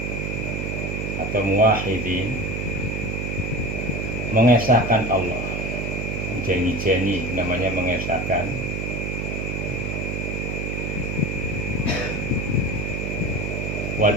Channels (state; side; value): noise; right; hum, 2 dB below the sound